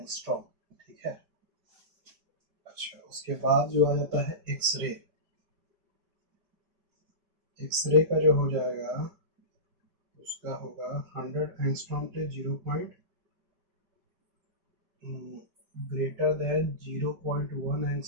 ठीक है। अच्छा, उसके बाद जो आ जाता है एक्सरे, एक्सरे का जो हो जाएगा उसका होगा 100 एंगस्ट्रॉम से 0. Greater than 0.1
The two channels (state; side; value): late; left; 5.1 ms